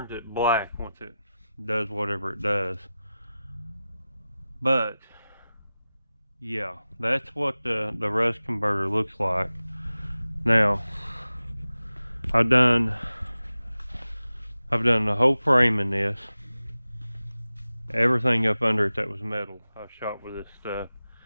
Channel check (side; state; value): both; inverted; correlation -0.95